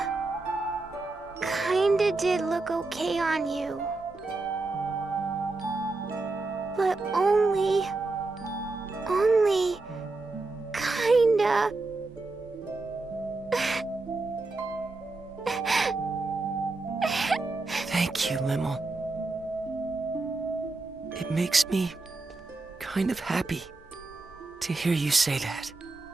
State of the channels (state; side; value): quieter; left; 3.4 dB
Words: did look okay on you. But only kinda. Thank you, Limmel. It makes me kind of happy to hear you say that.